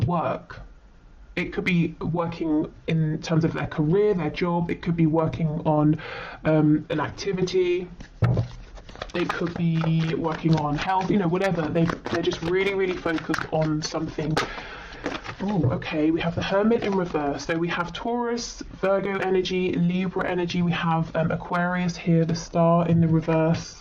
It could be working in terms of their career, their job. It could be working on an activity. It could be working on health, you know, whatever. They're just really, really focused on something. Oh, okay, we have the Hermit in reverse. So we have Taurus, Virgo energy, Libra energy. We have Aquarius here, the Star in the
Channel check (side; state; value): both; identical; correlation 1.00